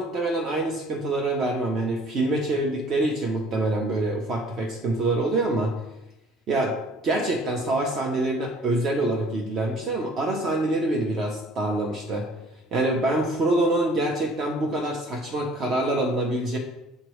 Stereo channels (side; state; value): both; normal; correlation 0.54